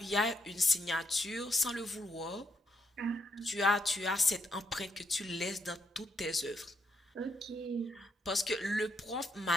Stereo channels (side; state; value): both; normal; correlation 0.77